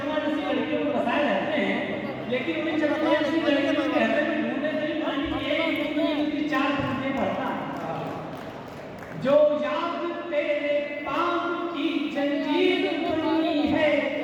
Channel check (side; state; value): both; identical; correlation 1.00